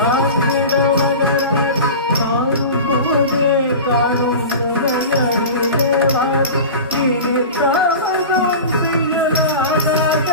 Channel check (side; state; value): both; inverted; correlation -0.32